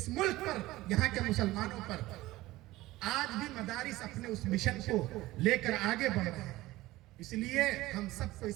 ملک پر، یہاں کے مسلمانوں پر۔ آج بھی مدارس اپنے اس مشن کو لے کر آگے بڑھ رہے ہیں، اس لیے ہم سب کو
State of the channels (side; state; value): left; quieter; 18.0 dB